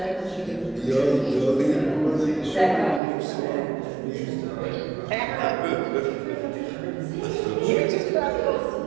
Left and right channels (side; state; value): left; drops out; at 3.0 s